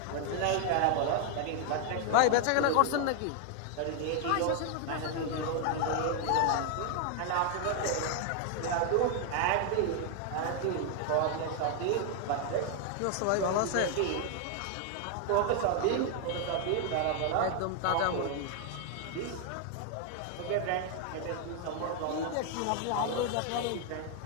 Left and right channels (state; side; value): different; both; correlation 0.00